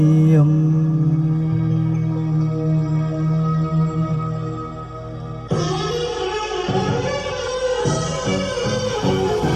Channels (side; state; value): both; identical; correlation 1.00